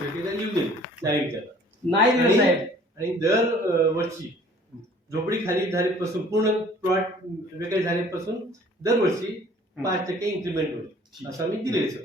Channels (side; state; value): both; normal; correlation 0.53